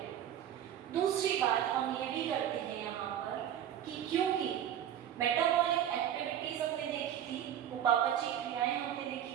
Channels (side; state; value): left; quieter; 10.5 dB